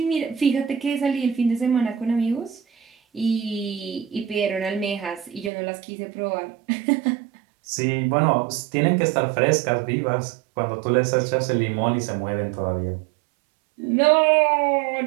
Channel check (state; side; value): drops out; left; at 5.5 s